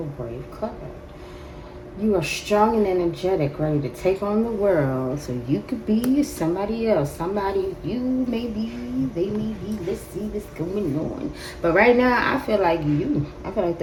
brave, clever. You are strong and energetic, ready to take on the world. So you could be somebody else. Somebody you may be, they may be. Let's see what's going on. But right now, I feel like you. I feel like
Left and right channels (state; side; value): identical; both; correlation 1.00